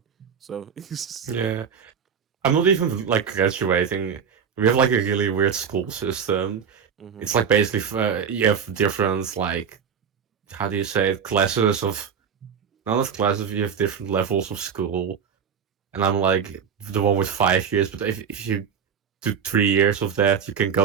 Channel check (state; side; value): quieter; left; 7.1 dB